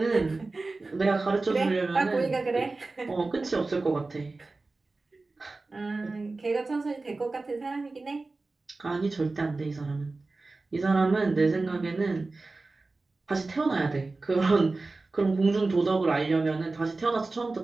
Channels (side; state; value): left; quieter; 3.5 dB